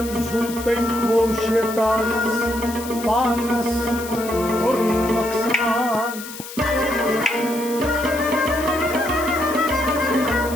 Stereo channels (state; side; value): noise; left; hiss, 12 dB below the sound